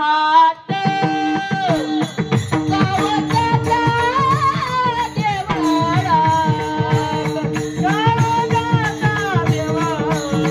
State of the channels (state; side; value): identical; both; correlation 1.00